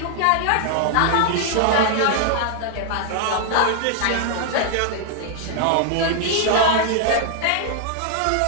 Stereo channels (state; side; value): different; both; correlation -0.01